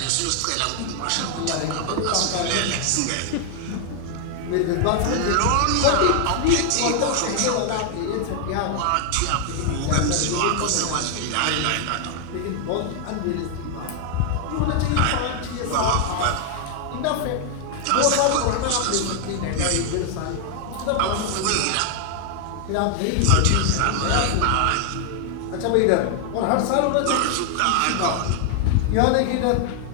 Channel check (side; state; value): both; different; correlation 0.00